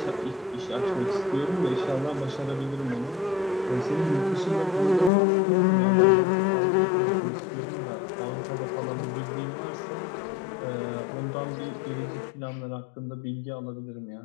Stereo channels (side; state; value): right; drops out; at 5.1 s